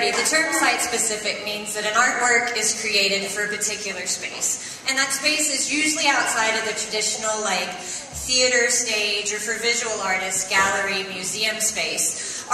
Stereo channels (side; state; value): both; identical; correlation 1.00